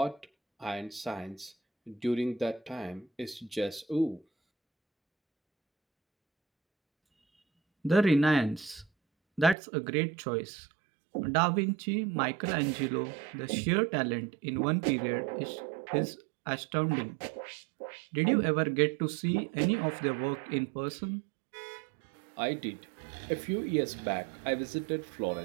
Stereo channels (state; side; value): drops out; left; at 9.6 s